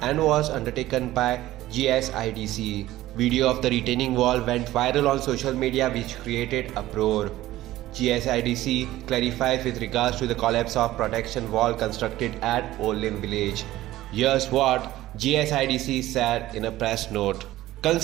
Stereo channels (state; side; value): quieter; left; 15.5 dB